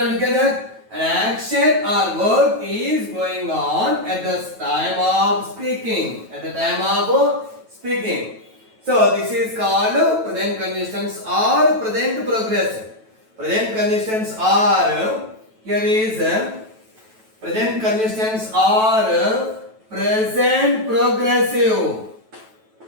Look at that. An action or work is going on at the time of speaking. At the time of speaking. So this is called present continuous tense or present progressive. Present continuous tense are here is present continuous tense or present progressive.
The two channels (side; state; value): left; late; 9.2 ms